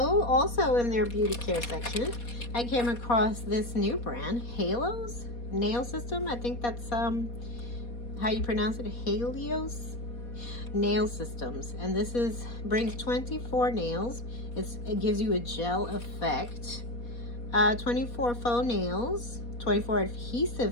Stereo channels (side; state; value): right; late; 4.2 ms